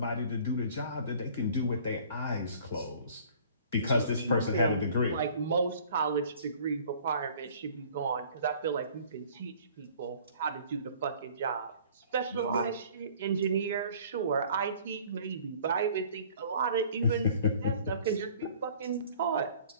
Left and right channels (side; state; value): both; inverted; correlation -0.52